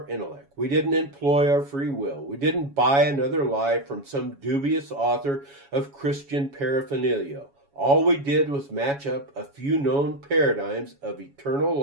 intellect. We didn't employ our free will. We didn't buy another lie from some dubious author of Christian paraphernalia. All we did was match up a few known paradigms of eternal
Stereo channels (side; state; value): left; late; 7.2 ms